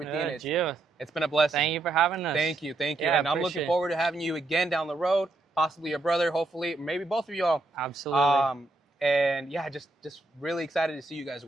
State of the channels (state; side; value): quieter; left; 3.0 dB